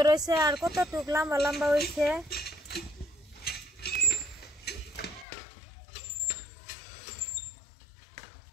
হয়েছে আর কতটুক লম্বা লম্বা হয়েছে।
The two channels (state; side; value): drops out; right; at 5.2 s